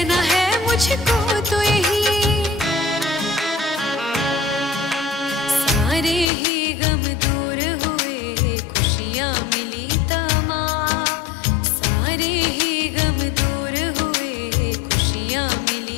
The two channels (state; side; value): drops out; right; at 6.2 s